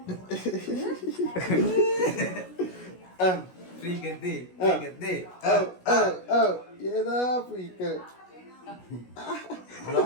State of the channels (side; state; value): right; late; 16 ms